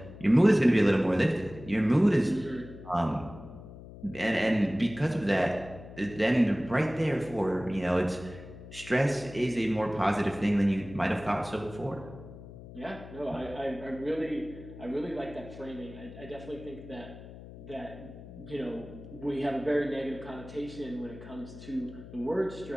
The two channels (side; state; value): left; noise; hum, 15 dB below the sound